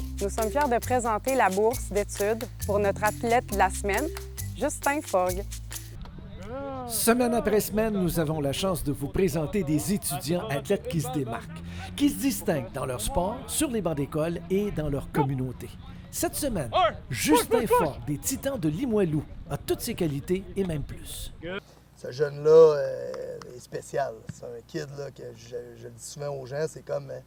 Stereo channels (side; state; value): both; identical; correlation 1.00